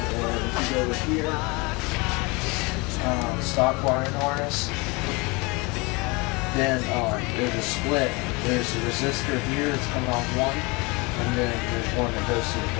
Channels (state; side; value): quieter; right; 27.0 dB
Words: if you go over here, stock wiring harness, then there's a split. There's a resistor here that's coming off one, and then there's one that goes to the